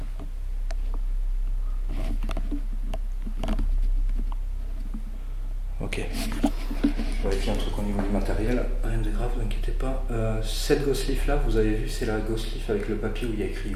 Ok. Je vérifie un truc au niveau du matériel. Rien de grave, ne vous inquiétez pas. Cette Ghost Leaf là, vous avez vu, c'est la Ghost Leaf avec le papier où il y a écrit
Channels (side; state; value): both; identical; correlation 1.00